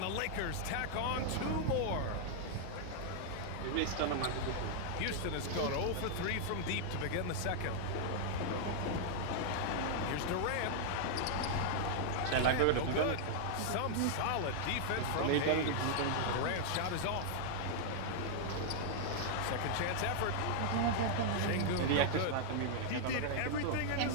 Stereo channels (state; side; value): different; both; correlation -0.01